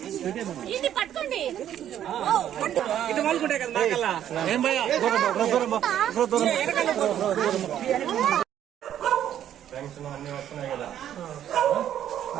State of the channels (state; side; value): quieter; left; 10.7 dB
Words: ఇది పట్టుకోండి, ఇది వాళ్ళకుంటాయి కదా మాకల్లా. ఏం భయ పెన్షన్ అన్ని వస్తున్నాయి కదా.